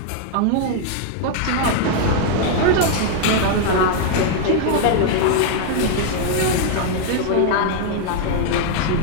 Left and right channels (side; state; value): both; different; correlation 0.00